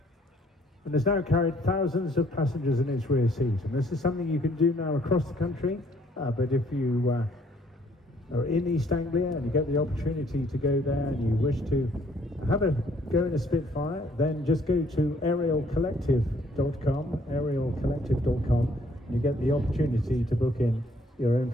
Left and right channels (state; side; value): normal; both; correlation 0.64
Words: And has now carried thousands of passengers in its rear seat. And this is something you can do now across the country, but if you are in East Anglia and you get the opportunity to go there and you wish to have a go in a Spitfire, then just go to aerialcollective.com, and you get the opportunity to book in your own